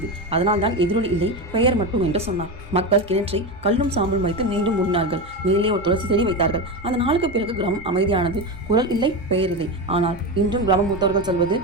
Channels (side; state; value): both; normal; correlation 0.18